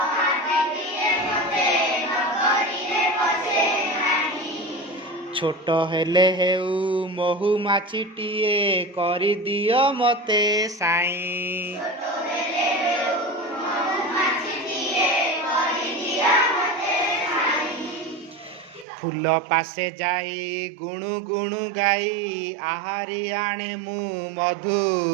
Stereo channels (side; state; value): left; drops out; at 18.9 s